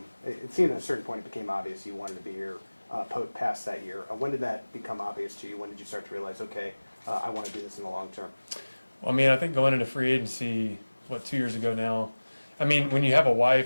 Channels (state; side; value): inverted; both; correlation -1.00